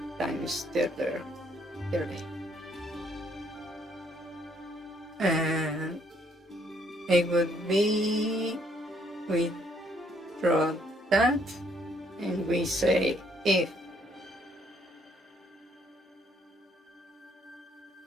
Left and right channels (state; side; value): normal; both; correlation 0.68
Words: times 30. And it would be, we draw that and we say if